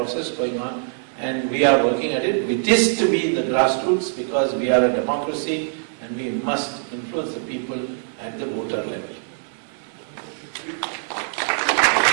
going on, and we are working at it. It is to be in the grassroots because we are a democracy and we must influence the people at the voter level.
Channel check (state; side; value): silent; left; digital silence